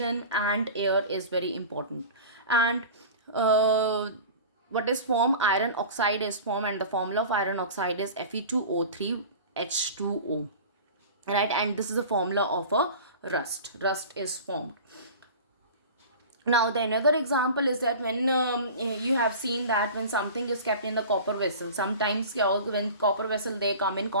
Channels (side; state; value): both; inverted; correlation -0.37